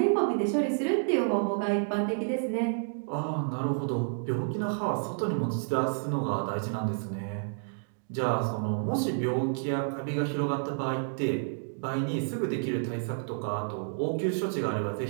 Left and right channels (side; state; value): left; silent; digital silence